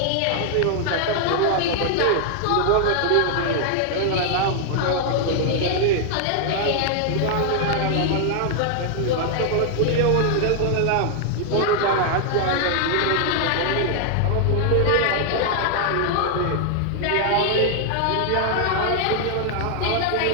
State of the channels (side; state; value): both; different; correlation 0.00